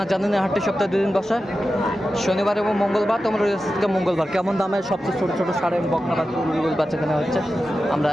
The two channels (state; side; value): normal; both; correlation 0.92